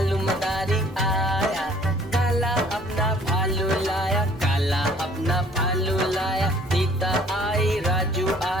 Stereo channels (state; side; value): normal; both; correlation 0.56